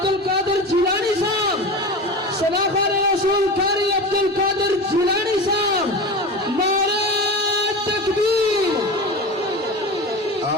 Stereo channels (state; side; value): normal; both; correlation 0.29